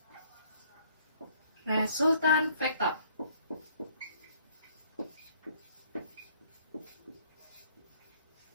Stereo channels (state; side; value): inverted; both; correlation -0.62